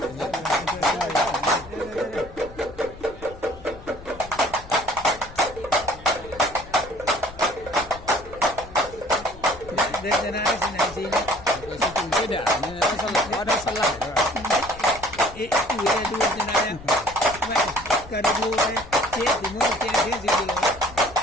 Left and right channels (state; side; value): noise; left; rumble, 17 dB below the sound